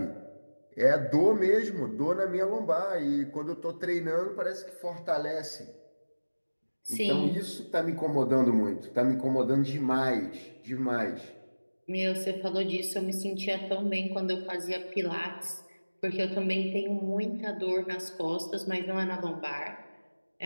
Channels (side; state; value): both; inverted; correlation -1.00